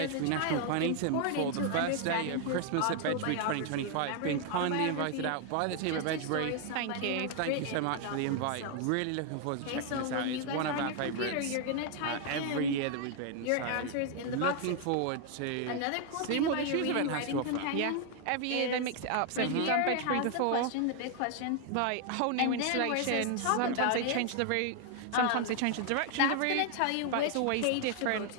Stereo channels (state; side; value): different; both; correlation 0.00